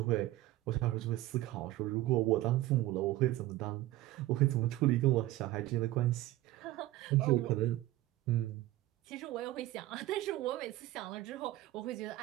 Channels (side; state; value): left; quieter; 16.2 dB